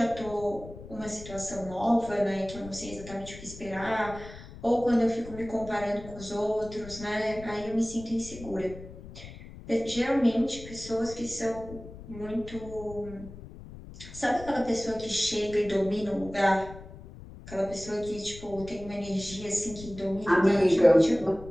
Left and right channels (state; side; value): noise; left; rumble, 15 dB below the sound